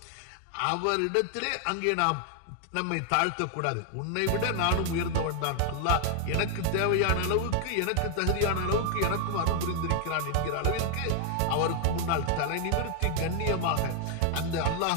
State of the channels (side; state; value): both; different; correlation 0.00